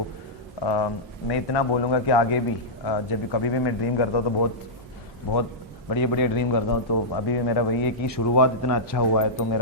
मैं इतना बोलूँगा कि आगे भी जब भी कभी भी मैं ड्रीम करता हूँ तो बहुत बढ़िया ड्रीम करता हूँ। तो अभी भी मेरा वही है कि शुरुआत इतना अच्छा हुआ है, तो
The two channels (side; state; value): both; normal; correlation -0.12